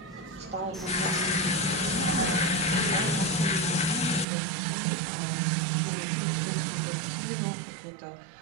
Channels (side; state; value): left; drops out; at 4.2 s